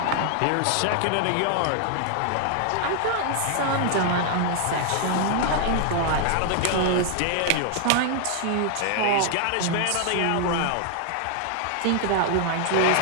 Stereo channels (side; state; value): both; different; correlation 0.00